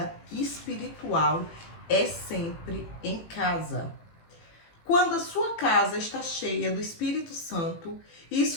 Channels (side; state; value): right; late; 18 ms